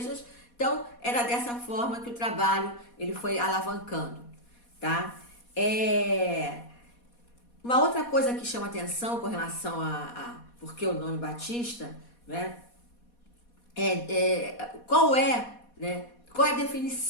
Então, era dessa forma que o trabalho ele foi alavancando, tá? Uma outra coisa que chama atenção com relação a por que o nome Batista, né? Qual é a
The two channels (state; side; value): late; right; 4.2 ms